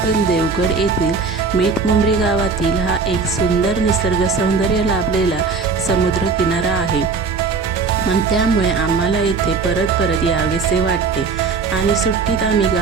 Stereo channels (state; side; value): quieter; left; 4.7 dB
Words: देवगड येथील मीठमुंबरी गावातील हा एक सुंदर निसर्ग सौंदर्य लाभलेला समुद्र किनारा आहे आणि त्यामुळे आम्हाला येथे परत परत यावेसे वाटते. आणि सुट्टीत आम्ही